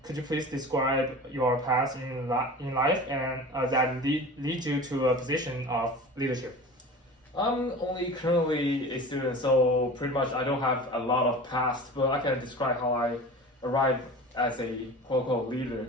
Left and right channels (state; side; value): normal; both; correlation 0.36